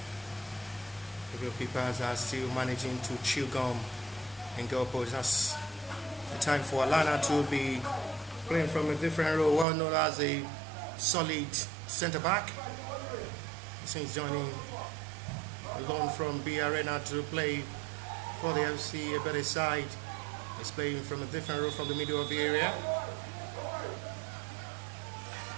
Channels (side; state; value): left; drops out; at 9.7 s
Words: The goalkeepers are still managing to chew gum and goal post. That's the time for Alana to be playing from a different role, well known as a solid centre back. Since joining alone from B Arena to play for the FC Ebedei side, he's playing from a different role from the middle of the area.